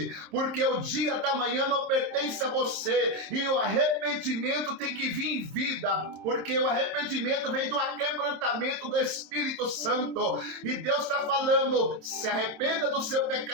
porque o dia da manhã não pertence a você, e o arrependimento tem que vir em vida, porque o arrependimento vem do aquebrantamento do Espírito Santo. E Deus está falando: se arrependa do seu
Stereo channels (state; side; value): late; left; 27 ms